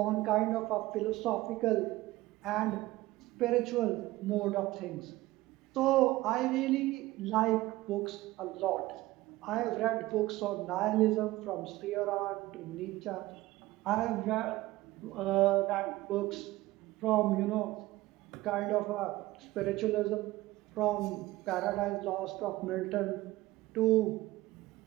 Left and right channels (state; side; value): quieter; left; 18.0 dB